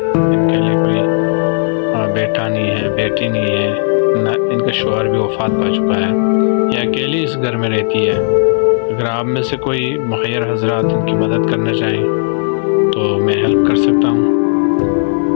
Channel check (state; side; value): silent; right; digital silence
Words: लिए कोई बेटा नहीं है, बेटी नहीं है, ना इनका शौहर भी वफ़ात पा चुका है। ये अकेली इस घर में रहती है। अगर आप में से कोई मुख़य्यर हज़रात इनकी मदद करना चाहें तो मैं हेल्प कर सकता हूँ,